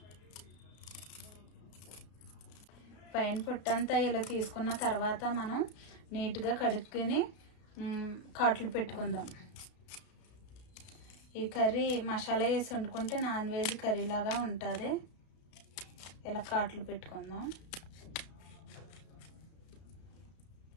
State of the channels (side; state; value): right; late; 33 ms